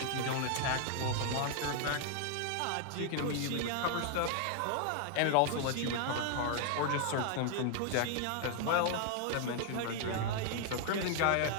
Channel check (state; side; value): different; both; correlation 0.00